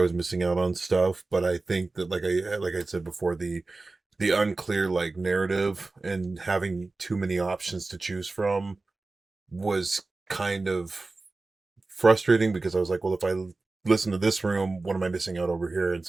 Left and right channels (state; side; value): quieter; left; 3.4 dB